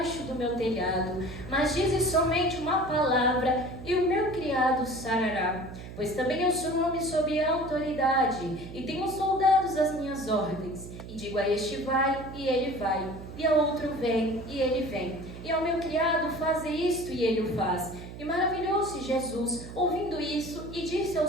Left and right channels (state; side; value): noise; right; hum, 12 dB below the sound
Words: do meu telhado, mas dizes somente uma palavra e o meu criado sarará. Pois também eu sou um homem sob autoridade e tenho soldados às minhas ordens. E digo a este vai e ele vai, e a outro vem e ele vem, e ao meu criado faze isto e ele o faz. E maravilhou-se Jesus ouvindo isso e disse